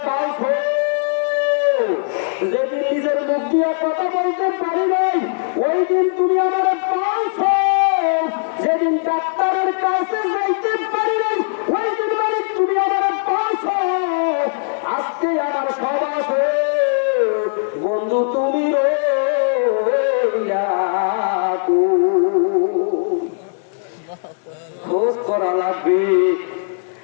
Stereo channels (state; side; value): silent; right; digital silence